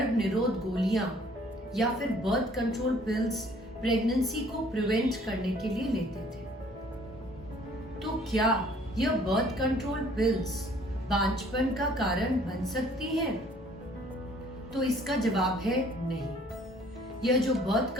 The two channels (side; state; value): both; normal; correlation 0.57